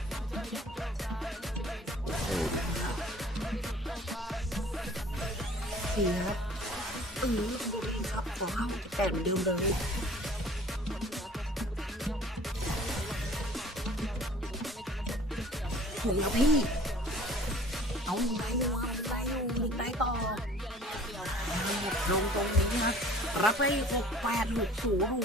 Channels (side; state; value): both; normal; correlation 0.50